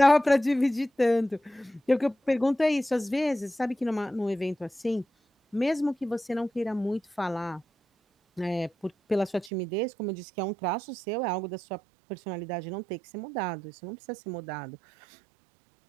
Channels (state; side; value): drops out; left; at 9.5 s